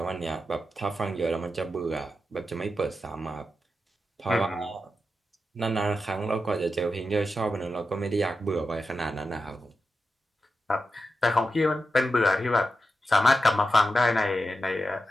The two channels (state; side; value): normal; both; correlation 0.89